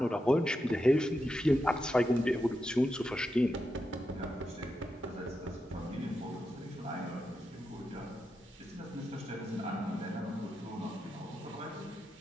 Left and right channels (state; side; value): normal; both; correlation 0.87